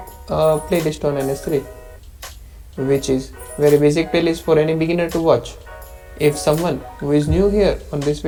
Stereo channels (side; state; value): both; identical; correlation 1.00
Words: a playlist on NS3, which is very basic playlist for any beginner to watch. If someone who is new here on this